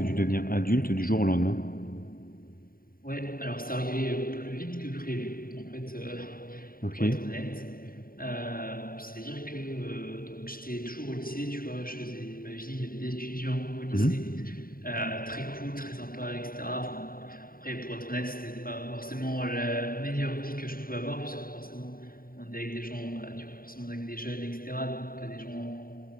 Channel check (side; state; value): right; late; 0.42 ms